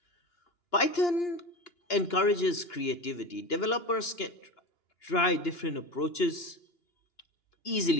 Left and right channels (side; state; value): right; late; 2.9 ms